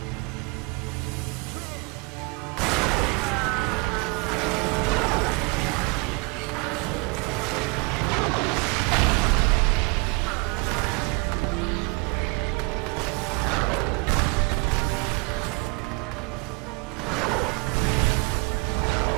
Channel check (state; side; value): quieter; left; 29.4 dB